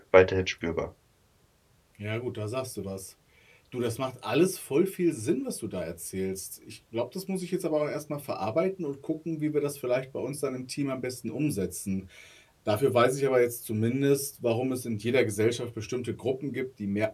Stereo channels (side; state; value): both; identical; correlation 1.00